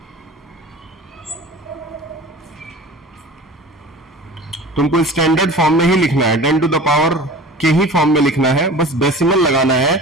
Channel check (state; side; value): normal; both; correlation 0.39